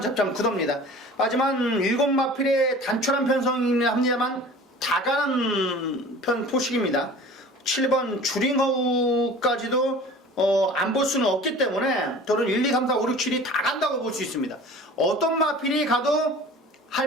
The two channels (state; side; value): normal; both; correlation 0.43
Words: 접점 구도입니다. 하지만 7마필의 단촐한 편성이긴 합니다만 다 가는 편 포식입니다. 7번 주링허우까지도 안 볼 수는 없기 때문에 저는 1, 2, 3, 4, 5, 6, 7이 다 간다고 볼 수 있습니다. 어떤 마필이 가도